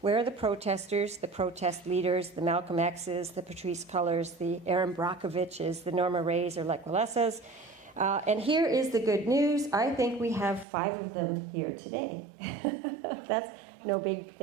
Where are the protesters, the protest leaders, the Malcolm X's, the Patrisse Cullors, the Erin Brockoviches, the Norma Rays or Lech Walesas? And here is the good news. I think we have 5 of them here today. That's no big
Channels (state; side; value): drops out; left; at 10.7 s